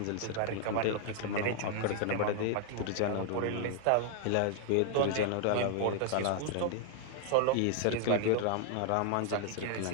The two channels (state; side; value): different; both; correlation 0.00